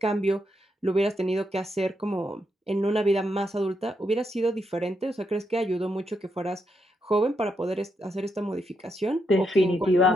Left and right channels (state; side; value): normal; both; correlation 0.81